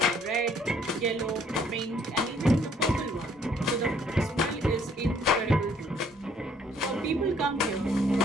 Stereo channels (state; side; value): normal; both; correlation 0.63